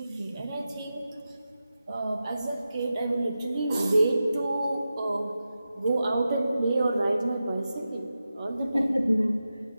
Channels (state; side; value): inverted; both; correlation -0.92